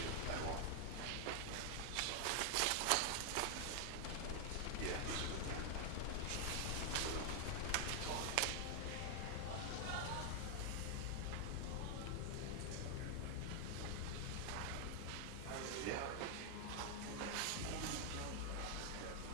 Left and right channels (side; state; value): both; different; correlation 0.00